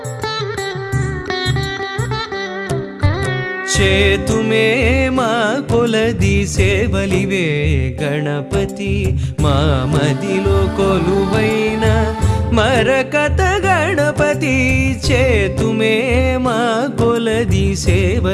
చేతుమే మా కొలది సేవలివే గణపతి మా మదిలో కొలువైన మరకత గణపతి చేతుమే మా కొలది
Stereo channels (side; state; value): both; identical; correlation 1.00